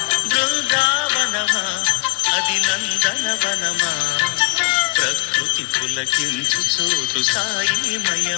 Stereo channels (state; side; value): quieter; right; 35.7 dB